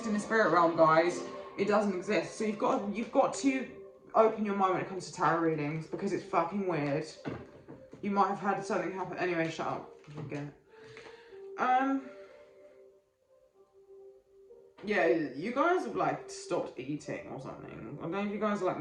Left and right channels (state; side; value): identical; both; correlation 1.00